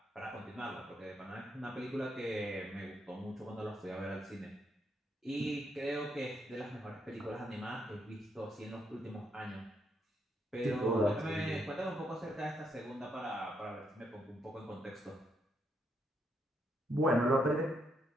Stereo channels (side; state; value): both; normal; correlation 0.77